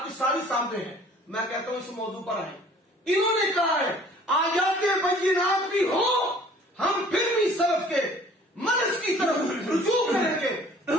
کی ساری سامنے ہے۔ میں کہتا ہوں اس موضوع پر آئیں، انہوں نے کہا ہے آیات بینات بھی ہو ہم پھر بھی سلف کے منہج کی طرف رجوع کریں گے،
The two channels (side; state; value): both; normal; correlation 0.52